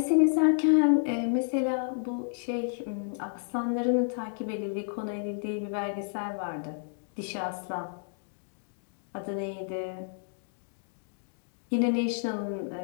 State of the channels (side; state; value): right; silent; digital silence